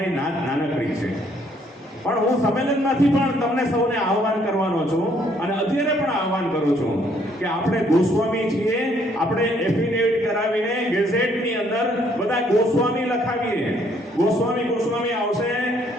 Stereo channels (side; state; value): both; normal; correlation 0.66